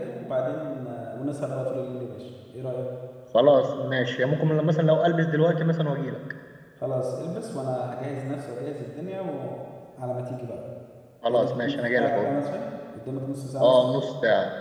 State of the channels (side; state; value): both; identical; correlation 1.00